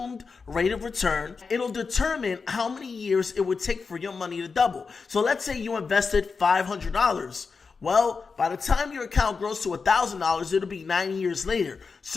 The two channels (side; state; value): right; quieter; 4.9 dB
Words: rate of return, it'll determine how many years it would take for your money to double. So let's say you invested $500. Well, by the time your account grows to $1,000, it'll be 9 years later.